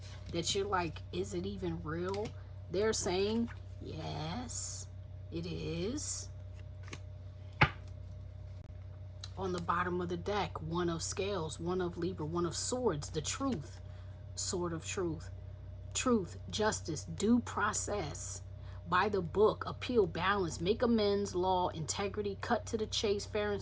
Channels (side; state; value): both; identical; correlation 1.00